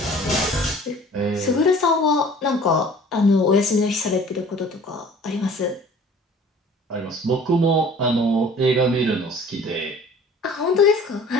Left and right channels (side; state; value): both; normal; correlation 0.48